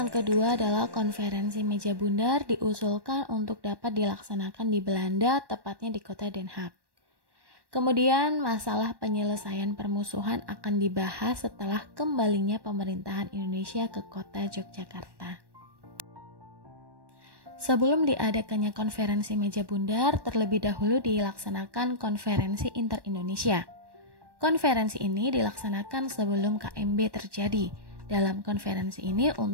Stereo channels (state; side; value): late; left; 1.1 ms